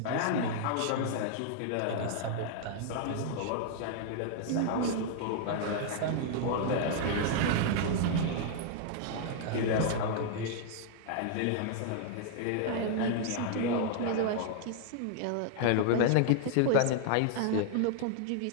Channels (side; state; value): both; different; correlation -0.01